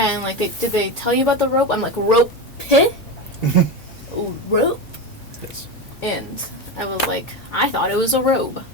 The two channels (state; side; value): normal; both; correlation 0.19